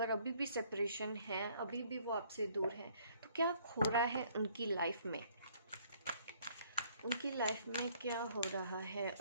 अभी भी सेपरेशन है, अभी भी वो आपसे दूर है, तो क्या हो रहा है उनकी लाइफ में, उनकी लाइफ में क्या हो रहा है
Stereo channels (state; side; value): inverted; both; correlation -0.62